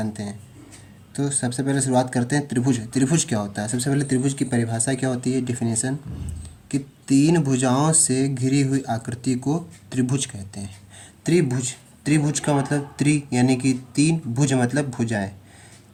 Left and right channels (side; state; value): both; identical; correlation 1.00